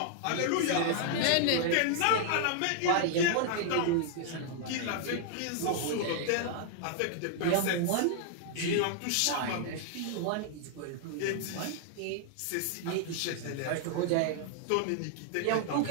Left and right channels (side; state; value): both; different; correlation 0.00